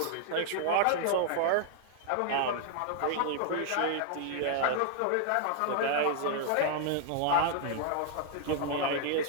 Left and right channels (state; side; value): different; both; correlation -0.01